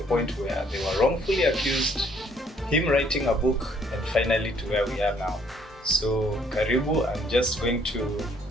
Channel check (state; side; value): normal; both; correlation 0.64